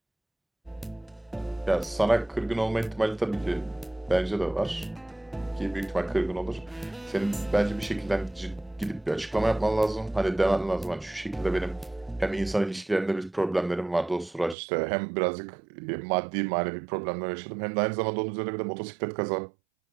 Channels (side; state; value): left; drops out; at 14.6 s